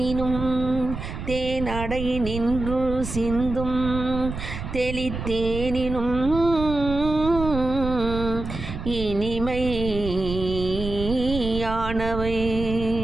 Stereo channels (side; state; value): right; noise; rumble, 7 dB below the sound